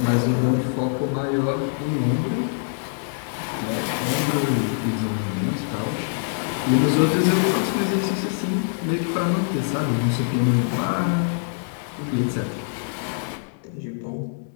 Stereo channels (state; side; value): silent; right; digital silence